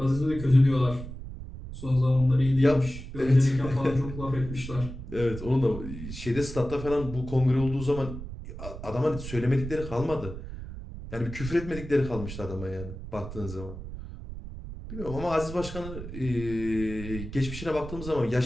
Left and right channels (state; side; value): noise; right; rumble, 10 dB below the sound